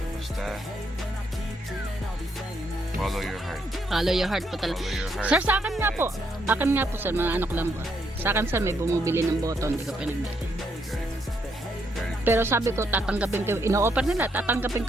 Follow your heart. Follow your heart po talaga. Follow your heart. Sir, sa akin nga po. Akin nga po, sir. Mga anak lang po. Sa akin, sir, may bumibili ng boto. Hindi ko pinagbili. Very Pero sabi ko, tatanggapin ko. Ino-offer nila, tatanggapin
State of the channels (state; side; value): normal; both; correlation 0.75